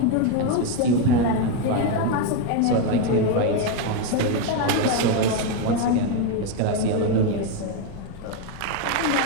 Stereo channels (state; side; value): different; both; correlation 0.02